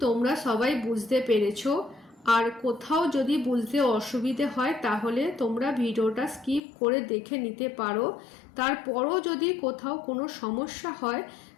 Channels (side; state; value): right; drops out; at 6.6 s